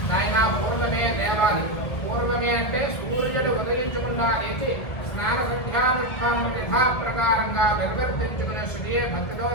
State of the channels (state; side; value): late; right; 1.7 ms